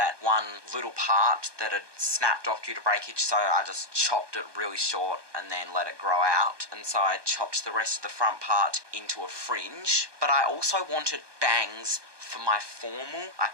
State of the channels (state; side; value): late; left; 1.2 ms